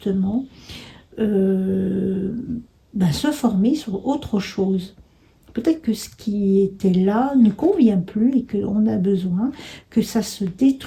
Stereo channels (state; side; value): identical; both; correlation 1.00